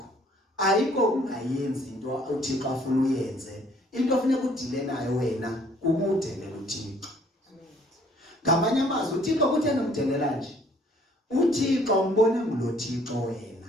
ayikho ungayenzi into uThixo afuna uyenze. Into ofuneka udile nayo wena ukudelela uThixo. Ngamanye amazwi uThixo kutheni umdelela nje? uThixo umbone ngulo Thixo wena.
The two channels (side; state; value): both; normal; correlation 0.60